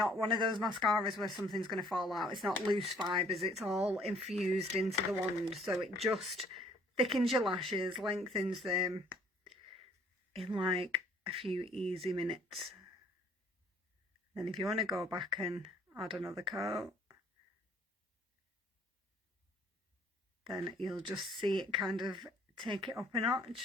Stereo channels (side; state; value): both; normal; correlation 0.60